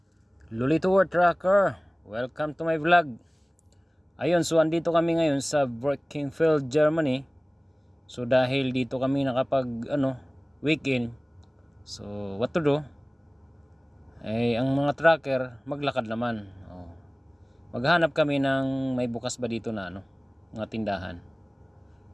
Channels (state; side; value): normal; both; correlation 0.98